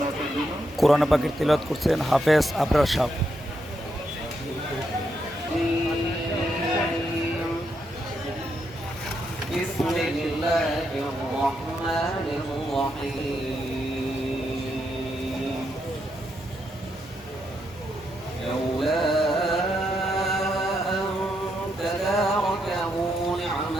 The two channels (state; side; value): normal; both; correlation 0.80